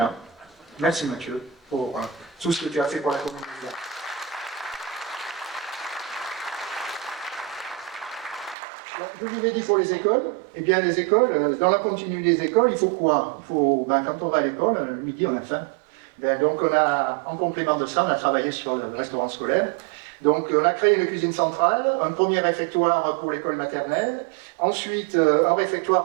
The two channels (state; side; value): drops out; left; at 8.6 s